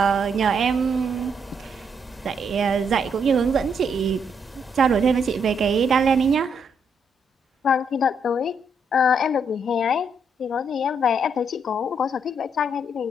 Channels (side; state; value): both; normal; correlation 0.75